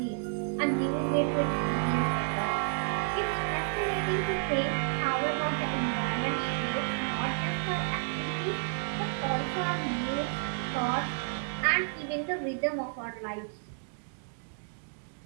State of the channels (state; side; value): silent; left; digital silence